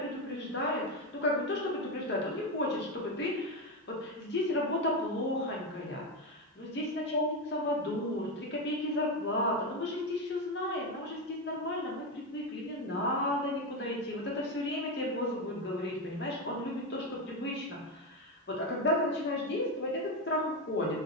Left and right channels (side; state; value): both; normal; correlation 0.12